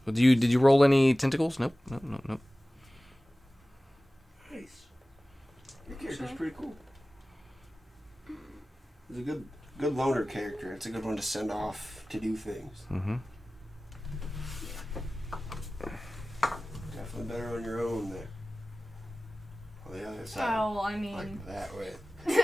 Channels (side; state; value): both; normal; correlation 0.97